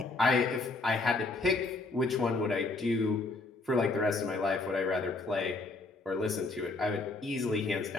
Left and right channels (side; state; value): right; quieter; 3.4 dB